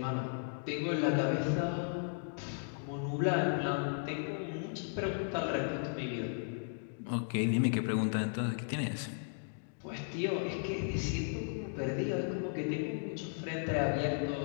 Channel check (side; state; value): right; silent; digital silence